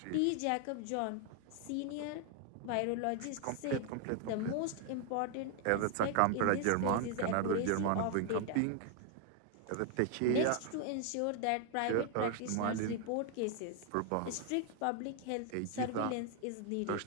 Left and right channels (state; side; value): different; both; correlation 0.00